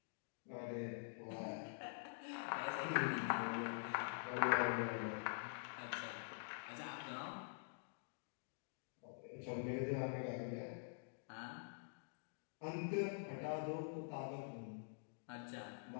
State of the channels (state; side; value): silent; right; digital silence